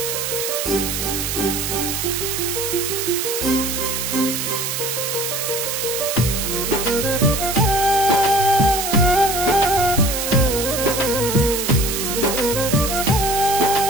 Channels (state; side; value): noise; right; hiss, 2 dB below the sound